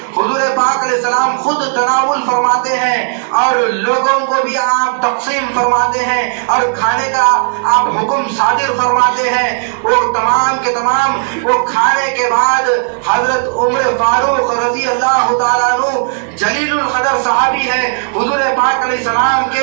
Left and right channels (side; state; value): left; silent; 68 dB below the other